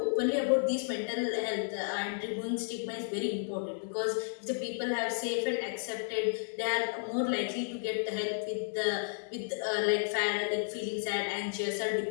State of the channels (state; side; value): silent; right; digital silence